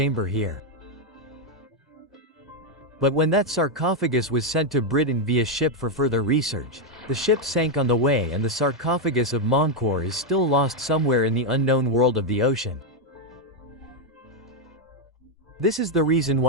here. But when that sarcophagus was sent to Britain via ship for further research, the ship sank on the way, and the sarcophagus of Menkaure is still lost somewhere in the unknown world of the ocean. This is the reason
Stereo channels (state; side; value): normal; both; correlation 0.02